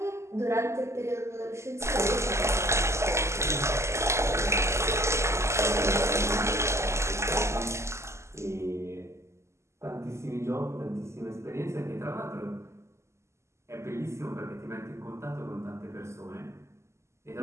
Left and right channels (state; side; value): late; left; 0.13 ms